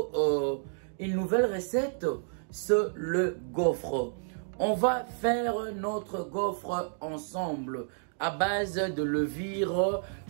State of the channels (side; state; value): left; silent; digital silence